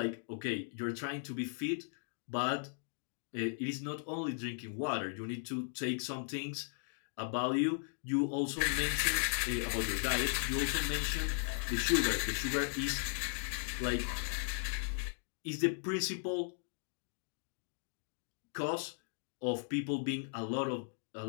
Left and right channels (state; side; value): silent; right; digital silence